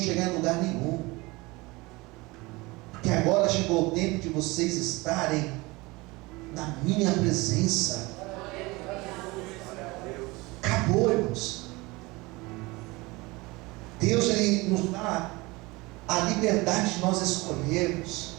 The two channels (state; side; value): quieter; left; 23.2 dB